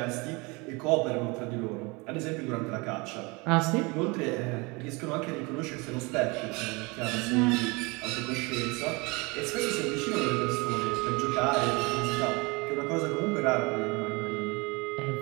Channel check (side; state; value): left; quieter; 26.9 dB